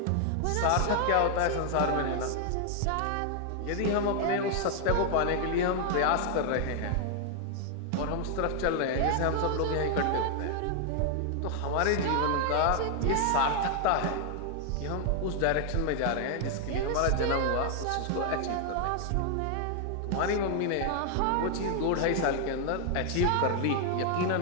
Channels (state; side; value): different; both; correlation 0.00